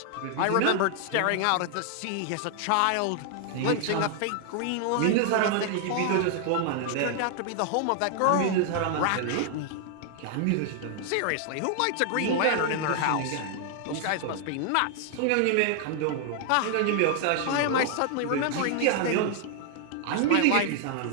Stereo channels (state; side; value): different; both; correlation 0.00